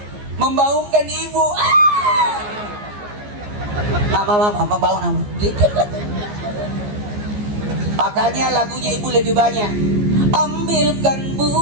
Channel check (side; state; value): left; late; 14 ms